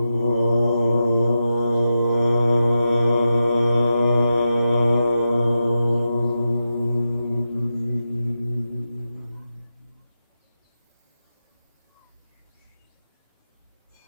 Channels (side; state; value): both; inverted; correlation -0.89